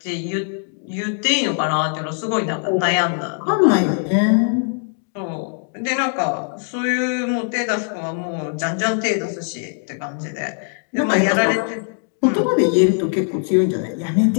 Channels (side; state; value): right; silent; 56 dB below the other